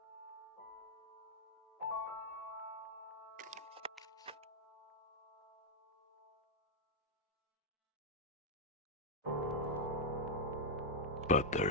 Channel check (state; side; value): normal; both; correlation -0.01